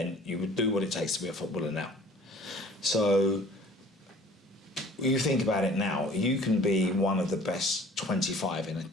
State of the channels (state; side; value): normal; both; correlation 0.50